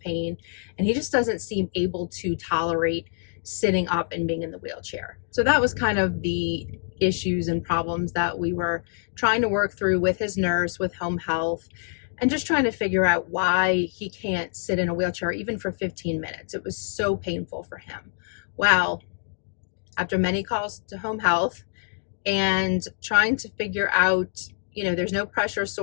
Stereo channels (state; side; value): silent; right; digital silence